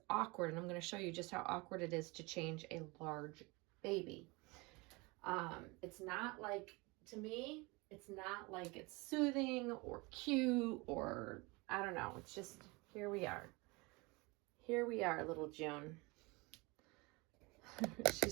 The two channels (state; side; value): quieter; left; 25.8 dB